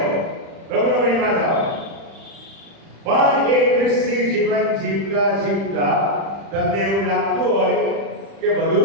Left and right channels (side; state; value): left; late; 35 ms